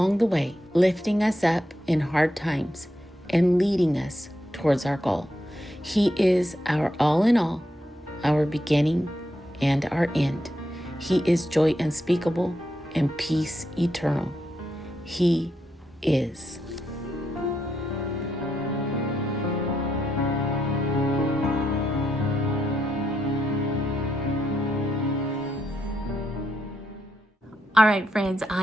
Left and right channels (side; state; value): both; normal; correlation 0.82